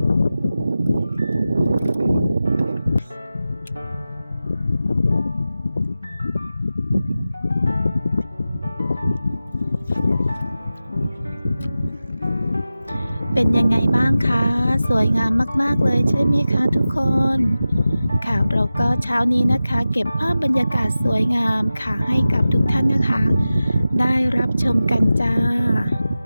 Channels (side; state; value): both; inverted; correlation -0.95